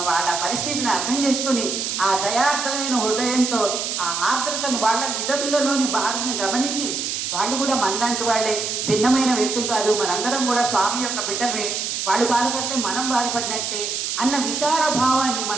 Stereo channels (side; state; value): right; noise; hiss, 2 dB below the sound